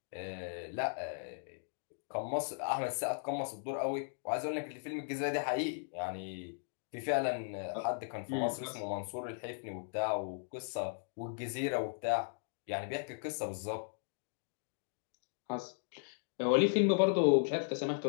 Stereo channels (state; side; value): silent; right; digital silence